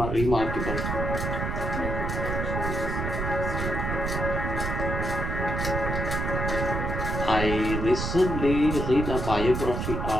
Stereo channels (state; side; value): noise; right; rumble, 2 dB below the sound